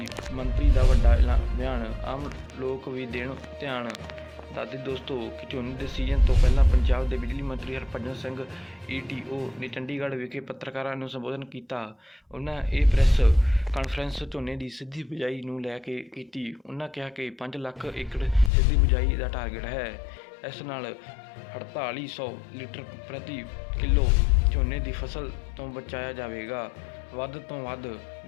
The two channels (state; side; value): drops out; right; at 18.5 s